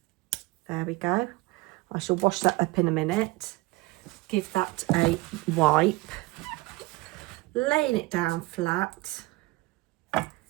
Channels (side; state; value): left; quieter; 21.9 dB